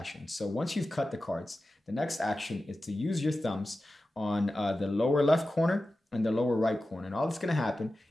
So once you've cut the cards, the next action is to use your thumbs on the lower left corner and the lower right corner. And all that's going to happen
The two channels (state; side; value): normal; both; correlation 0.94